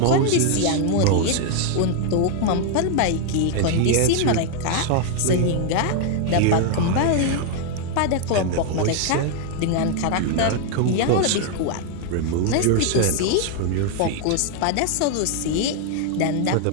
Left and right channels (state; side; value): different; both; correlation 0.00